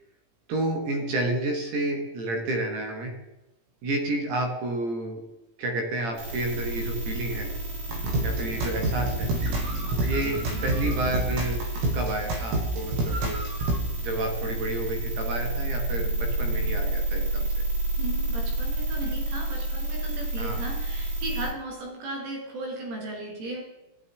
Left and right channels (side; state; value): left; late; 17 ms